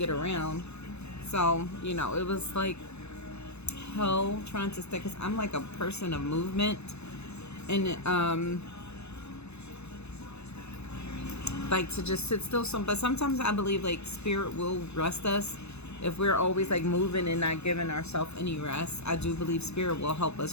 around. So it was like hell trying to stay, because I'm like a person of movement, and like to just sit still. But sometimes I believe like spirit will rest us if we're always like moving and not giving ourselves any rest. I do believe spirit will help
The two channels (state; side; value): late; right; 0.80 ms